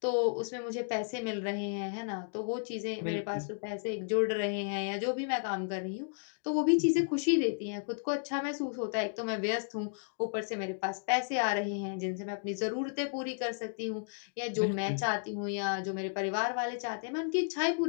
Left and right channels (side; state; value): right; silent; digital silence